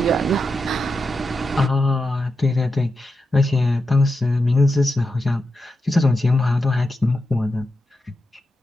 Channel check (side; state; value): both; normal; correlation 0.88